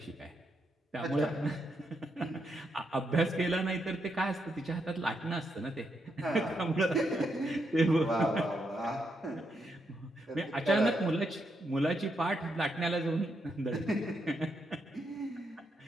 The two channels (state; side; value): normal; both; correlation 0.80